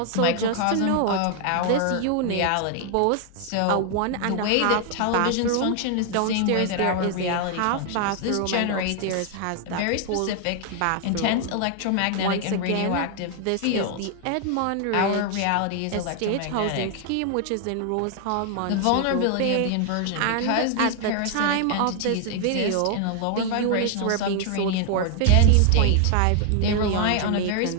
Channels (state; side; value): different; both; correlation 0.00